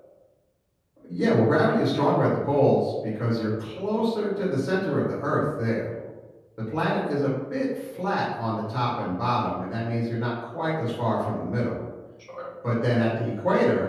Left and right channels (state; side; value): identical; both; correlation 1.00